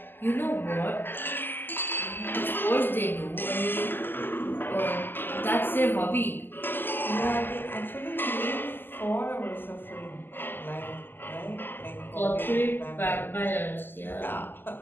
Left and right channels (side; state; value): right; late; 0.094 ms